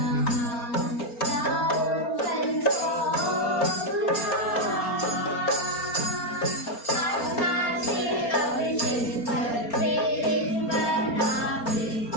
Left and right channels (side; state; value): right; late; 4.3 ms